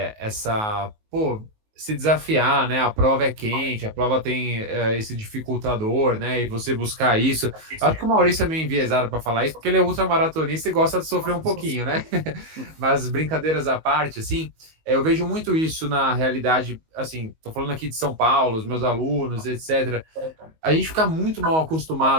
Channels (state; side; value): late; left; 19 ms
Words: essa, pô, se desafiar, né? A prova é quente, a prova tem esse dificultador, né? E você buscar isso. Acho que o Maurício é meio enviesado para falar isso, porque ele é ultramaratonista e gosta de sofrer um pouquinho, né? Mas brincadeiras à parte, assim, eu vejo muito isso na realidade, assim, tô falando aqui de São Paulo, os meus alunos, etc. A gente fica muito mal